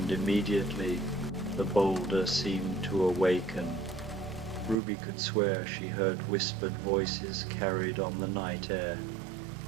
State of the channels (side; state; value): left; drops out; at 4.8 s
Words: immediately the boulder seemed to awaken. Ruby could swear she heard whispered voices carried on the night air,